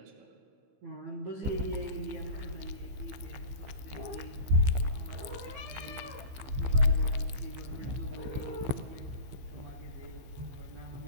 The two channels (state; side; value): late; left; 15 ms